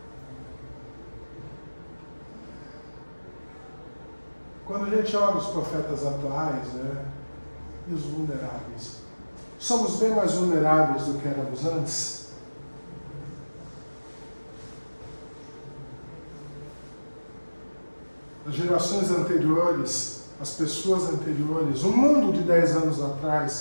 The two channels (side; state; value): both; inverted; correlation -1.00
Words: Quando a gente olha os profetas atuais, né, e os vulneráveis, somos bem mais vulneráveis do que éramos antes? As gerações anteriores, as pessoas anteriores, o mundo de 10 anos